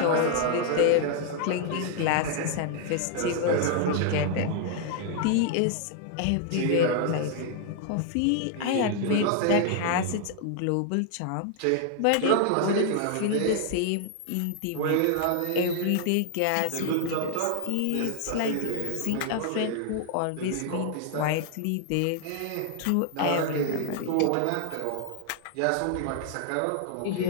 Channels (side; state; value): both; different; correlation 0.00